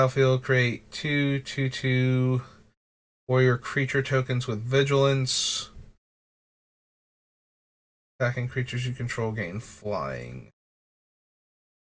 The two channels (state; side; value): identical; both; correlation 1.00